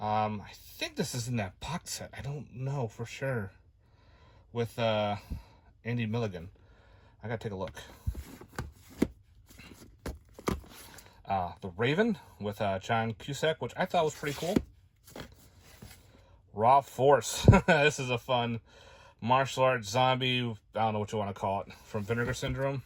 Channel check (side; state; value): both; identical; correlation 1.00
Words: think this is in that box set. I don't know for sure. With Andy Milligan. I gotta take a look. The Raven with John Cusack, which I thought was pretty cool. Raw Force. This is a fun martial arts zombie. I don't know what you want to call it. From Vinegar Syndrome.